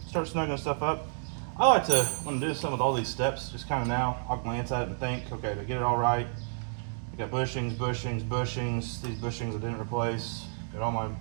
start snuggling stuff up. I like to, when I do something with all these steps, just kind of now, I'll glance at it and think, okay, to get it all right, I got bushings, bushings, bushings. These bushings I didn't replace. Got all my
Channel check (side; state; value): left; silent; digital silence